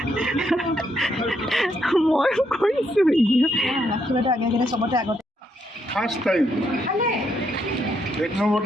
মই কৰিছোঁ ৰাখি বাইদেউ আগে আগে চবতে আগতে ফাৰ্ষ্ট টাইম 1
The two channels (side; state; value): both; normal; correlation 0.76